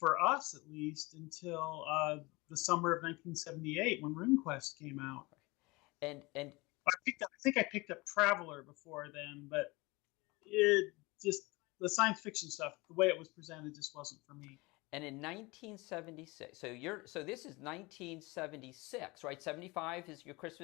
us, at least, until the summer of 1978 when RuneQuest came out. And I think I picked up Traveler before then, but it just the science fiction stuff, the way it was presented, just wasn't for me. And in 1976, so this is 1976, right? 75 is your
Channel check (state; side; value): quieter; right; 24.0 dB